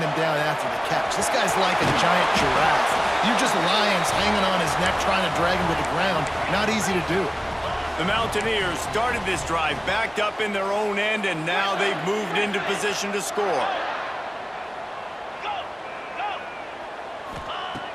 him down after the catch. This guy's like a giant giraffe. You're just lions hanging on his neck trying to drag him to the ground. Not easy to do. The Mountaineers started this drive backed up in their own end, and now they've moved into position to score.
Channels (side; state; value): both; identical; correlation 1.00